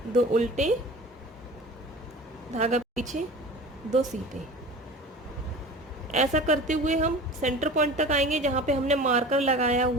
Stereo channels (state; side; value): normal; both; correlation 0.38